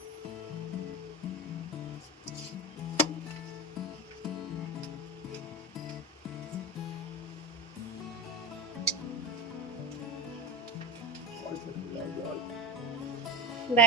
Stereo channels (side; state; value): both; normal; correlation 0.22